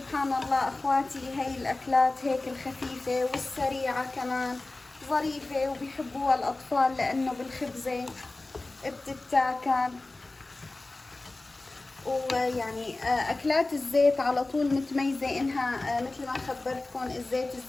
الله أخواتي، هي الأكلات هيك الخفيفة والسريعة كمان ظريفة وبيحبوها الأطفال لأنه بالخبزة بتتاكل. ويعني أكلات الزيت على طول متميزة إنها مثل ما خبرتكم الزيت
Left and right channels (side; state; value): right; quieter; 3.1 dB